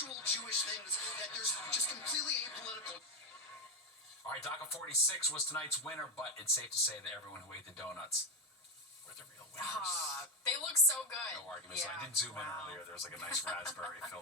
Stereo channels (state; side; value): normal; both; correlation 0.10